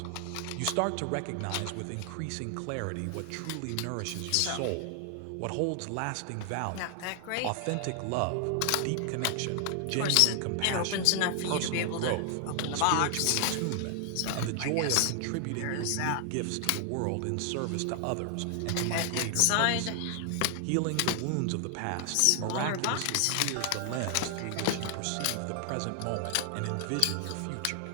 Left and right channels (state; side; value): different; both; correlation 0.00